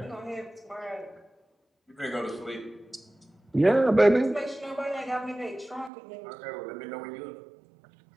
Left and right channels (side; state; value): left; drops out; at 5.9 s